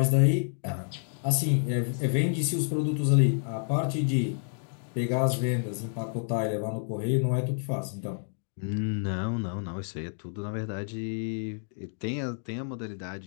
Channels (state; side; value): silent; right; digital silence